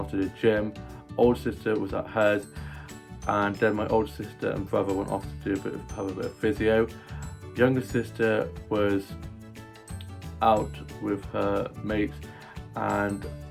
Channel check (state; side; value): identical; both; correlation 1.00